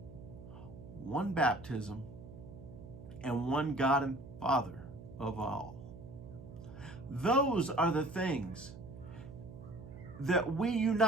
one baptism, and one God and Father of all. Those are the things that we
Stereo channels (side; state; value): right; noise; hum, 14 dB below the sound